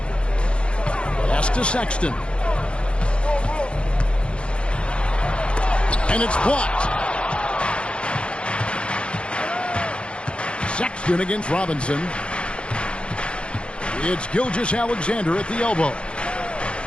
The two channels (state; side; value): late; right; 0.057 ms